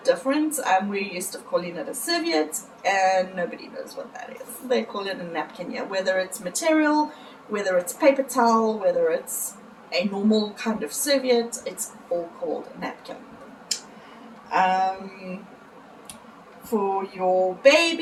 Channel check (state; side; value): identical; both; correlation 1.00